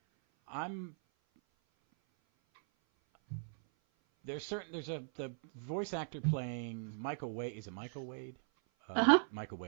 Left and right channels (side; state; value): left; silent; 52 dB below the other